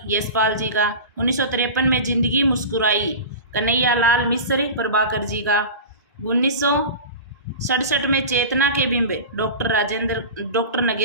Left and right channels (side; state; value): both; inverted; correlation -0.31